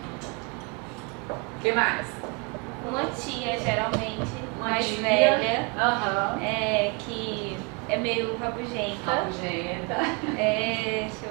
O que mais? Uma tia, geralmente, Uma mais tia. velha, Uhum. que é meio rabugenta. Rabugenta. Deixa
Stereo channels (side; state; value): left; quieter; 31.9 dB